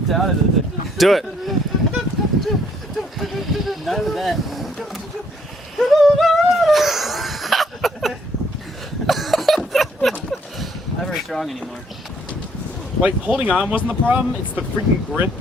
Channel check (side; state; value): both; normal; correlation 0.67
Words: out of it. Do it. None of that. Not very strong anymore. Like holding on wasn't the problem. It's the freaking grip,